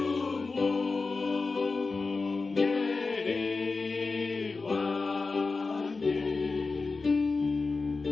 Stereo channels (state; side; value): quieter; right; 4.1 dB